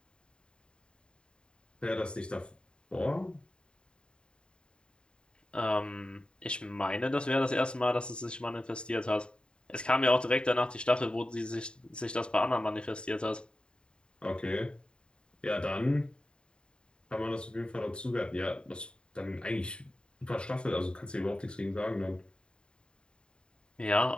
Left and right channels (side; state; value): right; late; 0.051 ms